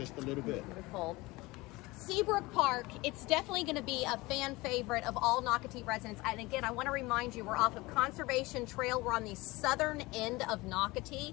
a little bit. Beautiful. Seabrook Park, it's definitely going to be a fan favorite of all Nocatee residents. And again, I want to remind you, we're off of Conservation Trail. We're on the southern end of Nocatee,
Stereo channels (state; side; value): quieter; right; 21.8 dB